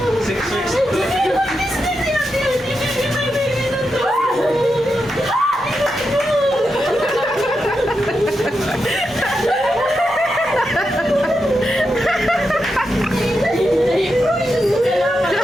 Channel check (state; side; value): normal; both; correlation 0.87